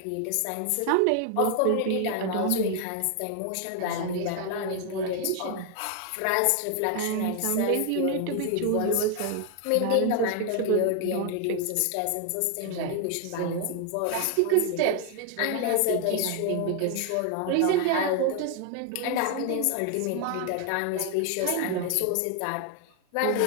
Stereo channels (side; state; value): both; different; correlation 0.00